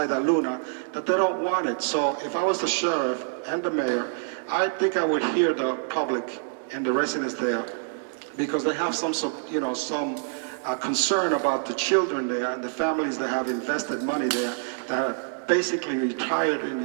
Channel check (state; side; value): silent; left; digital silence